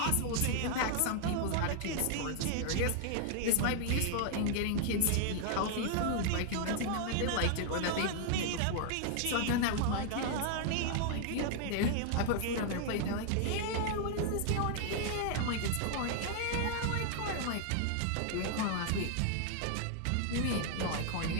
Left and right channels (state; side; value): different; both; correlation 0.00